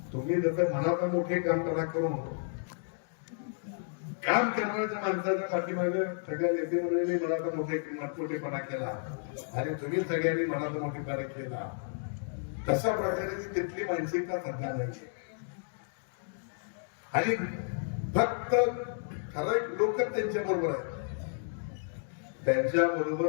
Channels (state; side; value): silent; right; digital silence